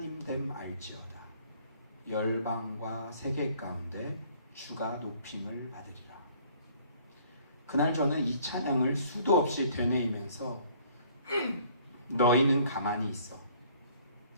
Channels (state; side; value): inverted; both; correlation -0.59